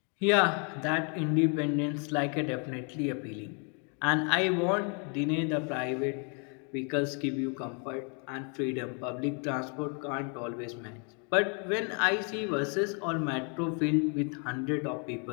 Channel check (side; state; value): right; quieter; 38.1 dB